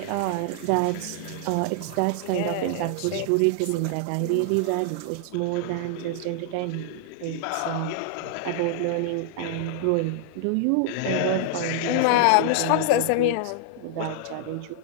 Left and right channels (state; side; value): different; both; correlation -0.01